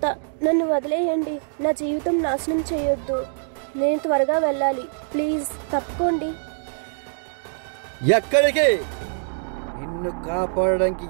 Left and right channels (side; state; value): left; silent; digital silence